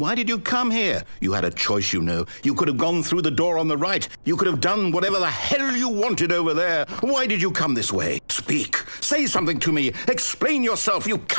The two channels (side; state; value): both; inverted; correlation -1.00